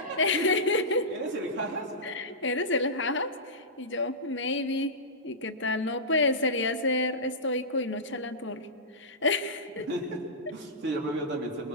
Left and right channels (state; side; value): normal; both; correlation -0.16